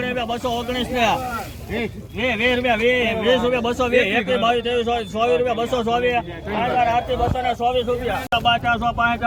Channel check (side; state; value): both; identical; correlation 1.00